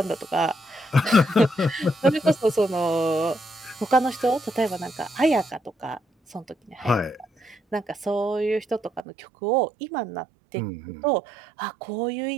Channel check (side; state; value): left; drops out; at 9.1 s